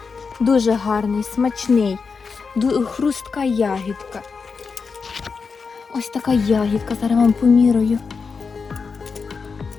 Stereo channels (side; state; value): right; quieter; 5.1 dB